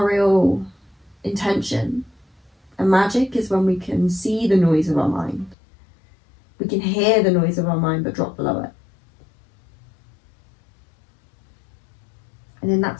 real intention and magic is when we can see the noise of our mind. We can hear the noise of our mind but drop below it. And in that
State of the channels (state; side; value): drops out; right; at 5.6 s